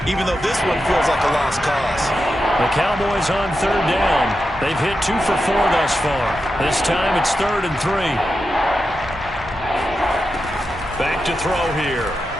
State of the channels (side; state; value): both; normal; correlation 0.89